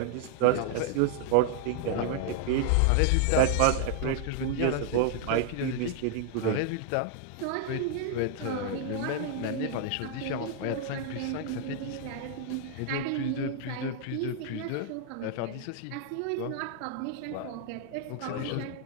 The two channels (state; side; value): different; both; correlation 0.00